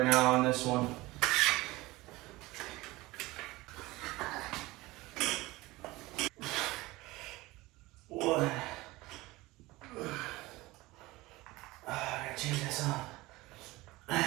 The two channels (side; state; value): left; quieter; 20.3 dB